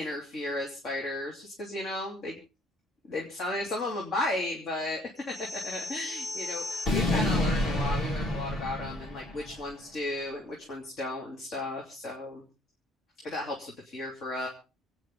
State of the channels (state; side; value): normal; both; correlation 0.60